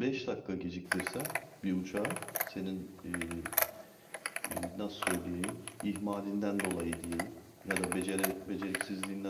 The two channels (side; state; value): both; identical; correlation 1.00